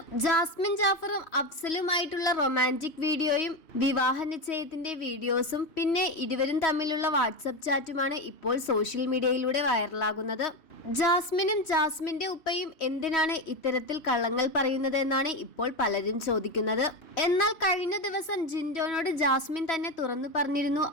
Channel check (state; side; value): late; right; 3.1 ms